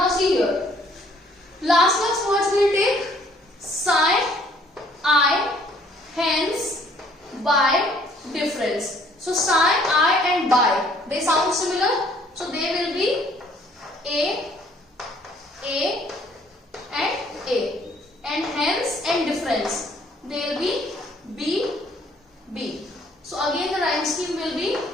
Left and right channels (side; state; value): both; normal; correlation 0.61